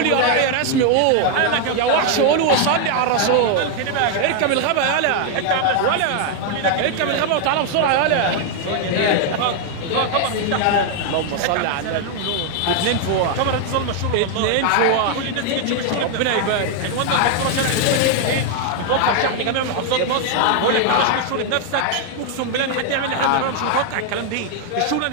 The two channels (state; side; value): different; both; correlation 0.00